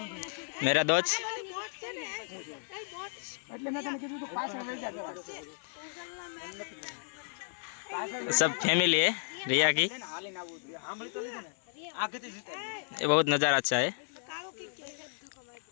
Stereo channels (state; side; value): silent; right; 55 dB below the other